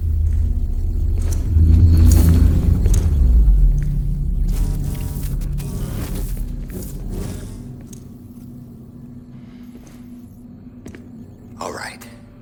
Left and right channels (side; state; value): both; identical; correlation 1.00